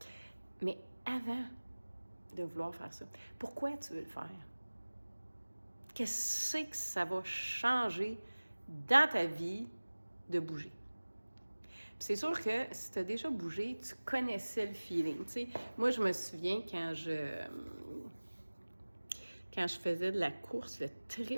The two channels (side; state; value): both; inverted; correlation -1.00